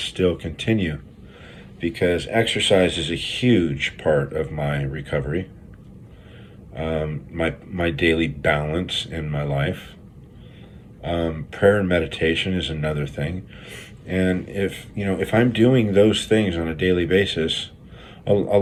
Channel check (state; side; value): identical; both; correlation 1.00